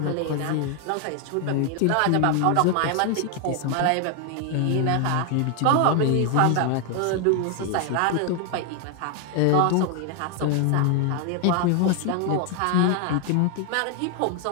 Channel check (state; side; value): different; both; correlation 0.00